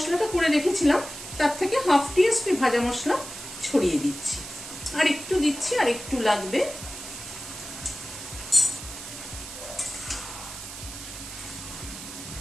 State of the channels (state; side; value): noise; right; hiss, 11 dB below the sound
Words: করে রেখেছিলাম তার থেকে 1/2 টিএসপি ভাজা মশলা ছড়িয়ে দিচ্ছি। আর একটু দিচ্ছি, আর একটু লাগবে।